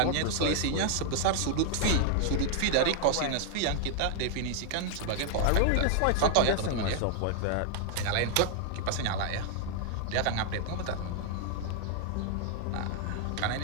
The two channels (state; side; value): different; both; correlation -0.01